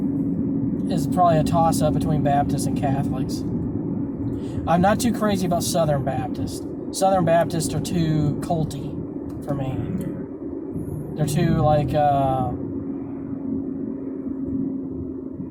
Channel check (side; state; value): both; identical; correlation 1.00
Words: is probably a toss-up between Baptists and Catholics. I'm not too crazy about Southern Baptists. Southern Baptists are too culty for me. They're too, like,